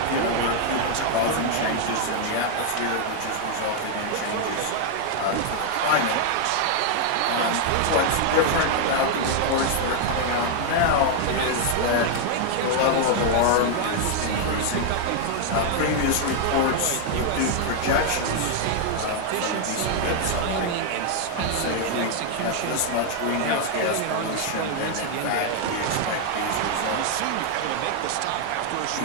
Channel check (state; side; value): different; both; correlation 0.00